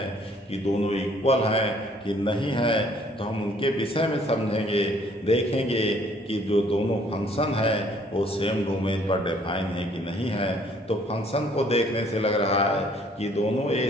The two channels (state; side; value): normal; both; correlation 0.61